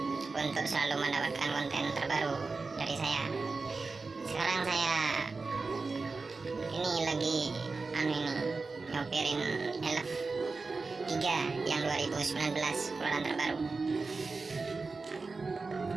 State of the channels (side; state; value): left; quieter; 4.0 dB